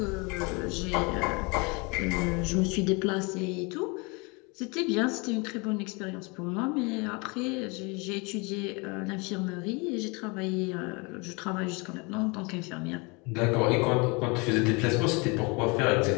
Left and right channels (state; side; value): quieter; right; 29.1 dB